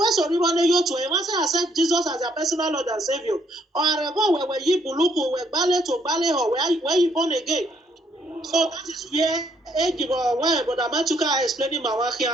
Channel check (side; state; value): both; normal; correlation 0.69